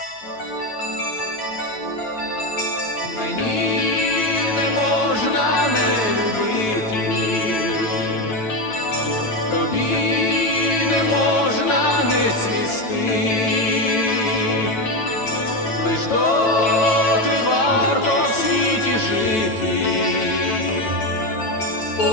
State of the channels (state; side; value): late; right; 9.1 ms